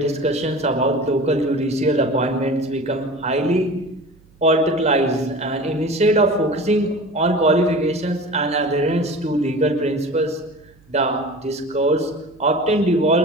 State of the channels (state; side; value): noise; right; hum, 30 dB below the sound